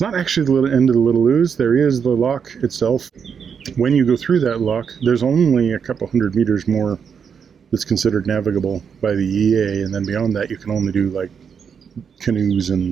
not actually the end of the Little Ouse. There is the lock itself. When you go through that lock, there's only a couple hundred meters more that's considered navigable by the EA, and then beyond that you can only do like canoes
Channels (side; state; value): left; quieter; 6.9 dB